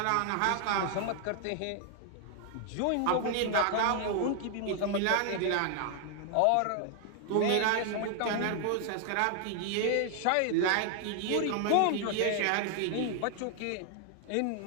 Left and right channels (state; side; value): different; both; correlation 0.00